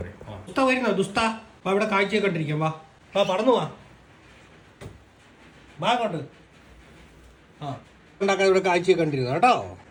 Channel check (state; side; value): identical; both; correlation 1.00